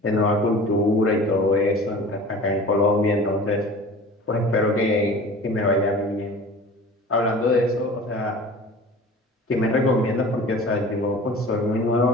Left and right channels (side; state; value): both; normal; correlation 0.41